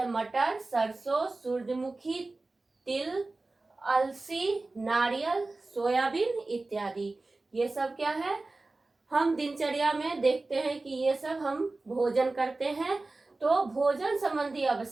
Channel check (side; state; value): left; quieter; 3.3 dB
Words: मटर, सरसों, सूरजमुखी, तिल, अलसी, नारियल, सोयाबीन इत्यादि। ये सब क्या है? हम दिनचर्या में देखते हैं कि ये सब हम भोजन करते हैं। तो भोजन संबंधी